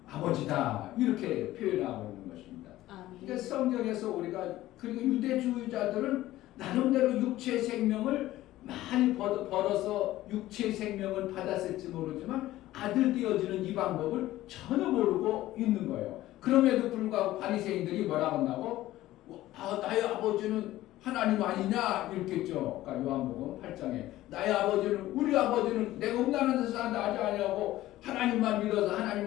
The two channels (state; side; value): quieter; right; 15.6 dB